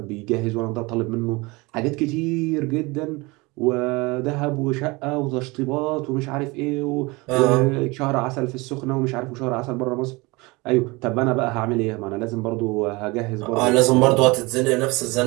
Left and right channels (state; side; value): quieter; left; 24.5 dB